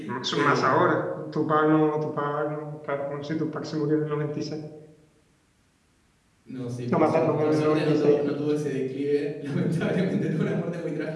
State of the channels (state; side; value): identical; both; correlation 1.00